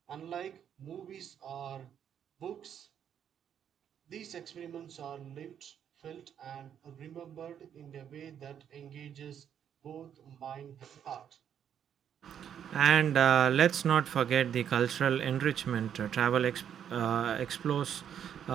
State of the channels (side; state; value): left; quieter; 9.0 dB